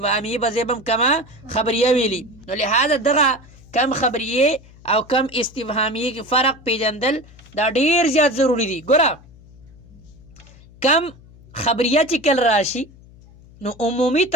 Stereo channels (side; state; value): left; noise; hum, 23 dB below the sound